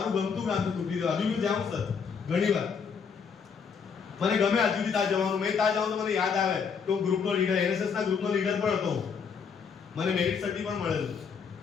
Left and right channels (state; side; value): quieter; right; 6.2 dB